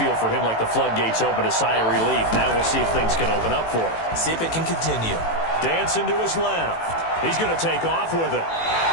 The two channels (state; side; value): late; right; 18 ms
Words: for him like the floodgates open, a sigh of relief. Now we'll see if things can open up for him. See if it can continue. Dancing to his left. He's going to take off with it.